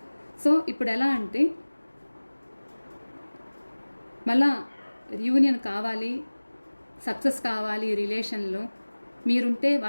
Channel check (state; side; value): inverted; both; correlation -1.00